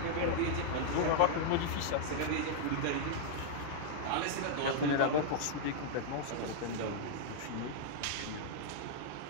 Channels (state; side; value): different; both; correlation -0.01